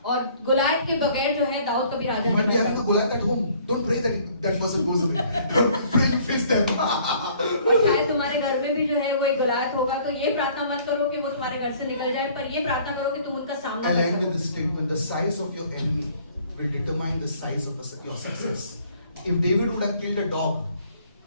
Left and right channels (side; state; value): both; inverted; correlation -0.58